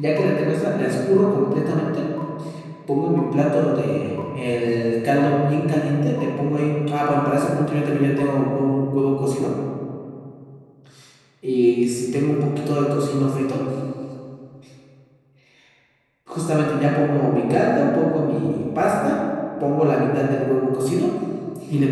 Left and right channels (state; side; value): identical; both; correlation 1.00